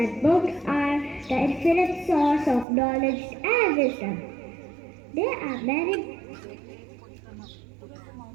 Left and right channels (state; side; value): drops out; left; at 2.7 s